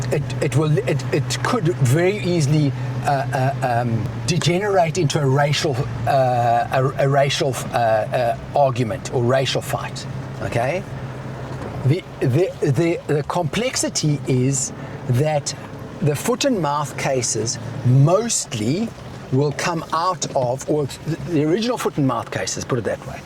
it could very easily degenerate into a racial argument or racial fight. Okay. The complexity is that the foot and mouth cases mostly will come out of, or the original foot and mouth cases, put it that way,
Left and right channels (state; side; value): identical; both; correlation 1.00